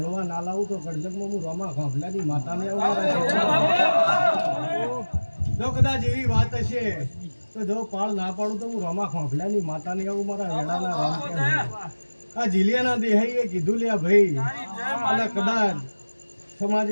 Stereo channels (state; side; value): inverted; both; correlation -1.00